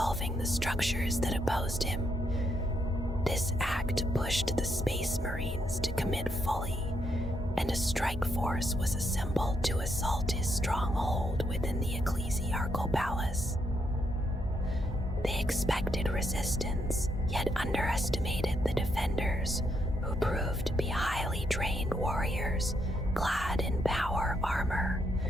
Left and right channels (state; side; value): normal; both; correlation 0.77